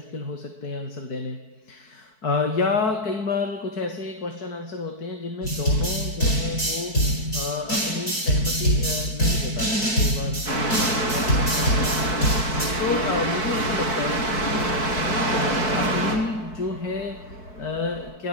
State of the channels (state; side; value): late; right; 4.6 ms